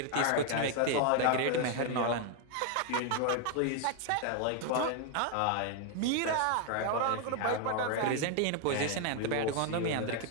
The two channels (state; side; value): different; both; correlation 0.00